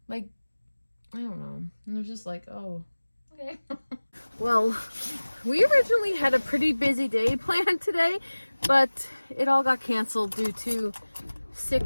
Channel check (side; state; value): both; inverted; correlation -1.00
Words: Like, I don't know. And it was just like, oh, okay. Well, we originally had a pretty busy day planned today, but it all got canceled due to